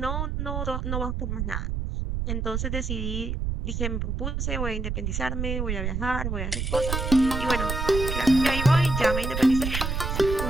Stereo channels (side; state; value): right; noise; rumble, 2 dB below the sound